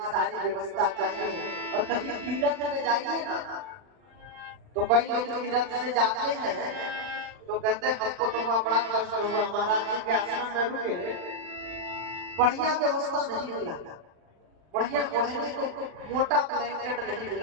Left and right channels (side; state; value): left; late; 40 ms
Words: सारी व्यवस्था चाहिए। और कहीं तीर्थ में जाइए ना, तो कई लोग तीर्थ से जाते हैं तो कहते हैं हमको तो वहाँ बड़ा कष्ट हुआ, महाराज जी के आश्रम में रुके, बढ़िया व्यवस्था नहीं मिला, बढ़िया ओढ़ने को मोटा ब्लैंकेट नहीं